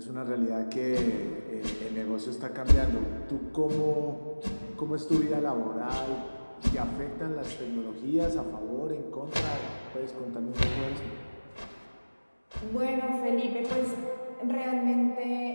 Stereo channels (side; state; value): both; inverted; correlation -1.00